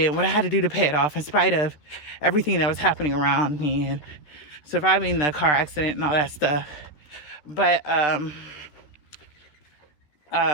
what I had to do to pay it off, in spite of everything that was happening around me and surviving the car accident and all that stuff. But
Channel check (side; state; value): right; late; 13 ms